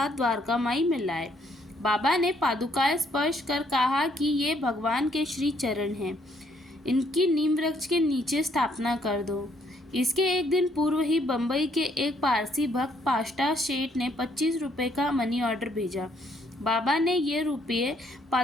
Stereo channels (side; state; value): both; normal; correlation 0.68